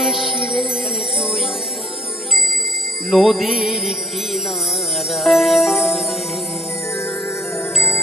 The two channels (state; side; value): normal; both; correlation 0.57